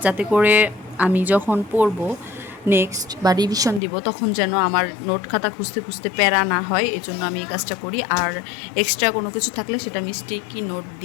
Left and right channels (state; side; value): drops out; right; at 3.8 s